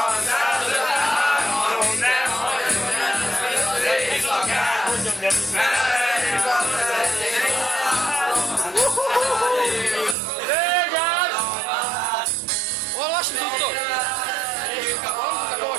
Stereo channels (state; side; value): drops out; left; at 10.2 s